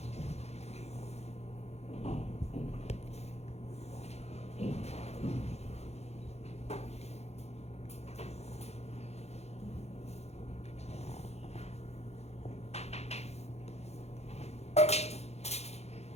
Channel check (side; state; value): right; late; 0.31 ms